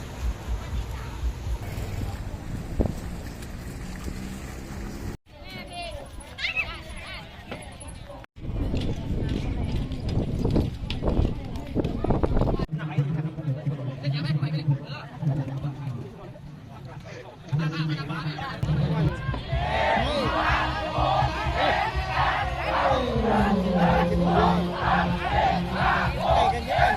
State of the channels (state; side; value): identical; both; correlation 1.00